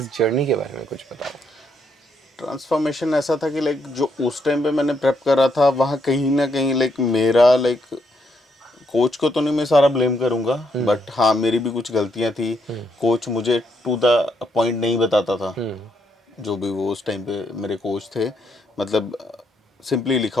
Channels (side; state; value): both; normal; correlation 0.76